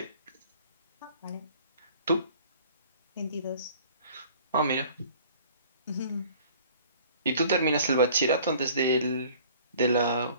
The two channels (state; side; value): inverted; both; correlation -0.51